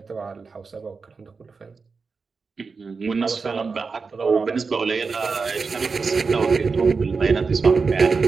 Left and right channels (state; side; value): quieter; left; 4.7 dB